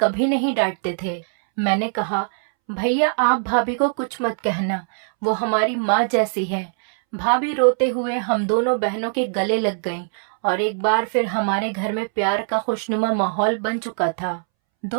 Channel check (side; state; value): left; silent; 64 dB below the other